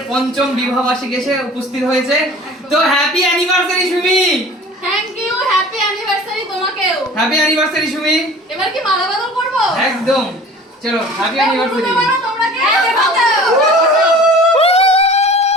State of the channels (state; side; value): normal; both; correlation 0.44